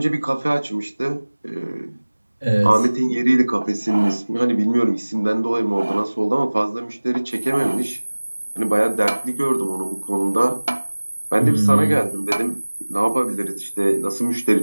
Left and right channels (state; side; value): inverted; both; correlation -1.00